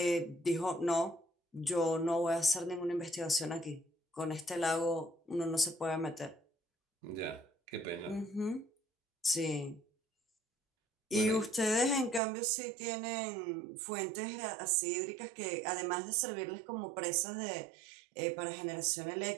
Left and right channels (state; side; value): drops out; left; at 12.2 s